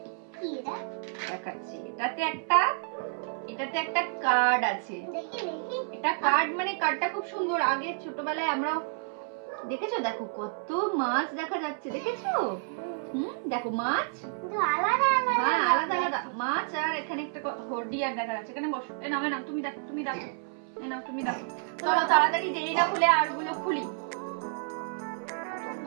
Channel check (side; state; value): left; silent; 58 dB below the other